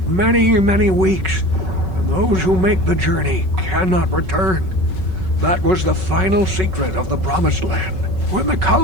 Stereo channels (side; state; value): left; late; 5.3 ms